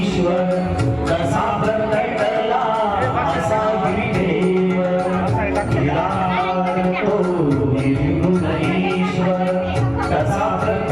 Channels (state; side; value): noise; right; hum, 24 dB below the sound